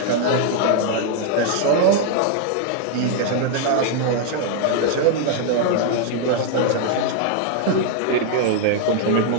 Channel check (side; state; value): both; different; correlation 0.00